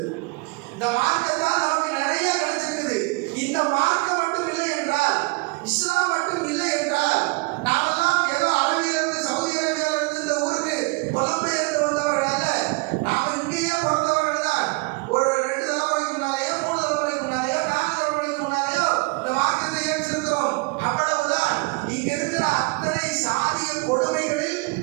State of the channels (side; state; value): left; quieter; 27.8 dB